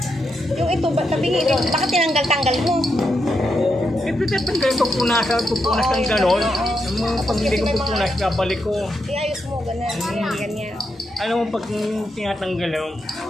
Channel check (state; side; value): normal; both; correlation 0.83